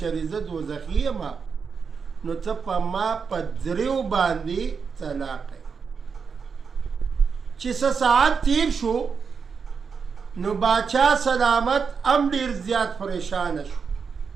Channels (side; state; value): left; quieter; 5.7 dB